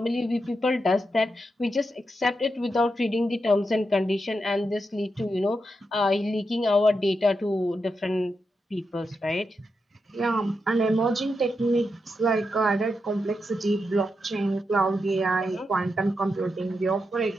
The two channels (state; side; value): normal; both; correlation 0.86